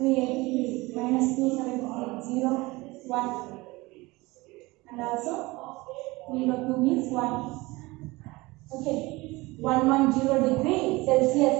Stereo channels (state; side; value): quieter; left; 22.0 dB